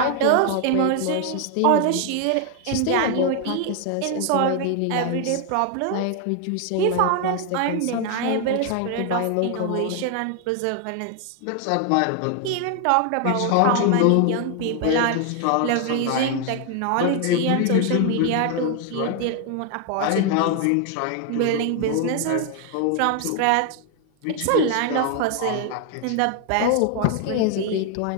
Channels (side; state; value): both; different; correlation 0.00